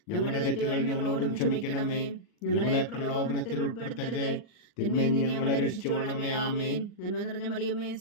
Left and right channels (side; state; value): right; late; 39 ms